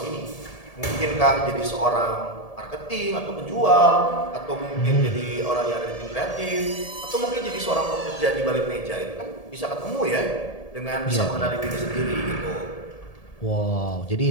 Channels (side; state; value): right; late; 1.7 ms